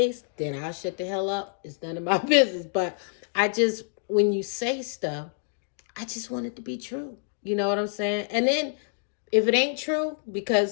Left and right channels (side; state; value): right; silent; digital silence